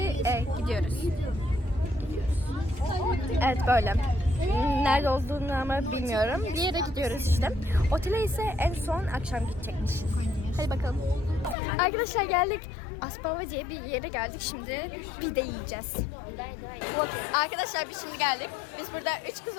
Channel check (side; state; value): right; drops out; at 11.6 s